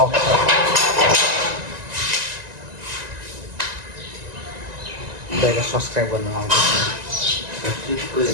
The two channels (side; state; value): left; late; 1.9 ms